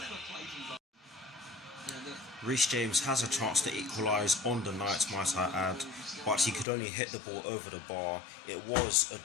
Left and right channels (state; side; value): drops out; right; at 6.7 s